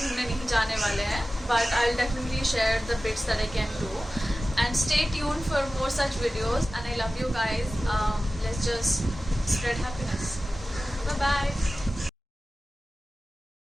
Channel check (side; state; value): both; normal; correlation 0.95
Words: नहीं जाने वाले हैं, but I will definitely share the bits that I can do. And stay tuned for more such videos, and I love you guys. Let's just spread happiness. Bye bye.